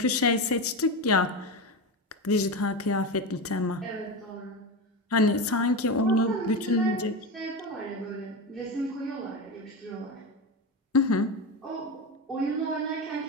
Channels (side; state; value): both; normal; correlation 0.19